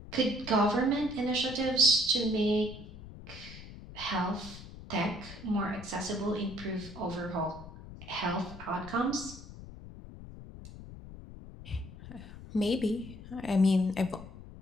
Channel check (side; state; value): left; noise; rumble, 15 dB below the sound